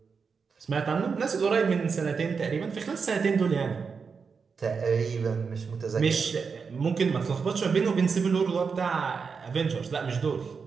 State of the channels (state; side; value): quieter; left; 5.5 dB